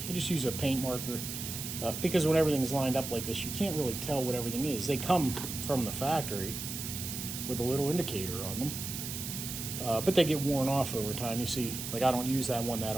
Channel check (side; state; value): right; noise; hiss, 6 dB below the sound